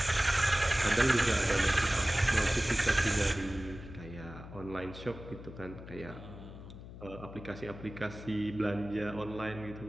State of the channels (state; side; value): noise; left; hum, 14 dB below the sound